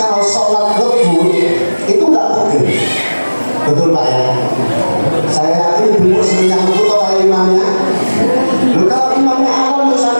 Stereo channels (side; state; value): both; inverted; correlation -1.00